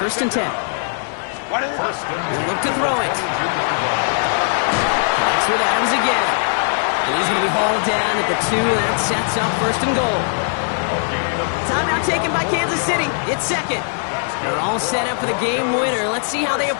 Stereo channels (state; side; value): silent; right; digital silence